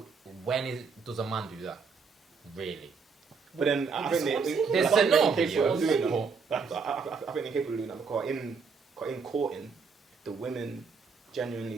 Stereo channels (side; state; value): left; quieter; 5.2 dB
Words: Does a man do that? Really? But then I think There's I think no they're capable of doing video. that. I think they're capable of doing that because in courting, the women genuinely